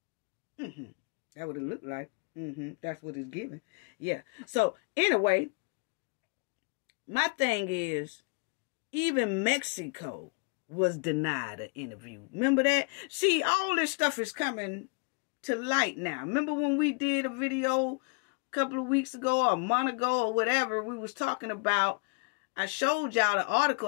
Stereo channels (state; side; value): quieter; right; 33.8 dB